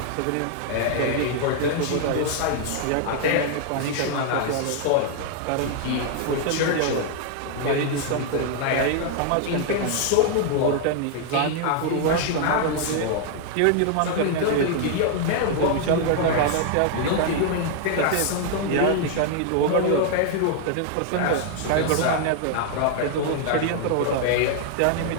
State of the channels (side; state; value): both; different; correlation 0.00